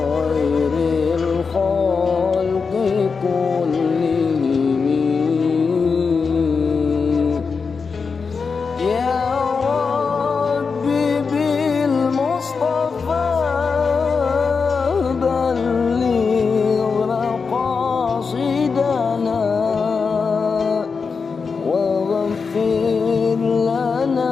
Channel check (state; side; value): quieter; right; 5.1 dB